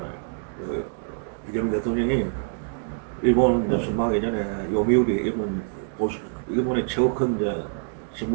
이재명 대통령이 일본은 이제 순방하기 전에 요미우리 일본의 최고 큰 이제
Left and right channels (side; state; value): left; silent; digital silence